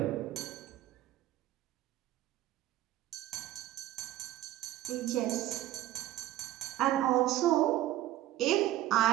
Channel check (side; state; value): left; quieter; 14.3 dB